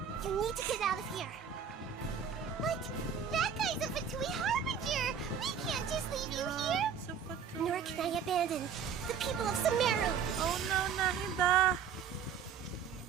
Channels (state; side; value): quieter; left; 7.2 dB